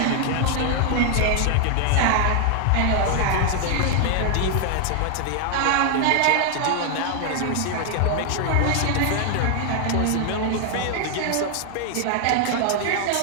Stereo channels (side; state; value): both; different; correlation 0.00